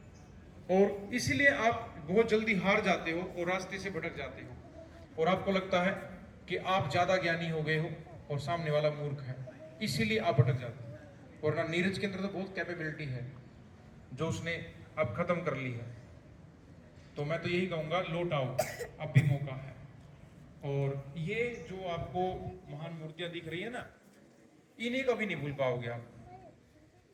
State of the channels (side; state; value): both; identical; correlation 1.00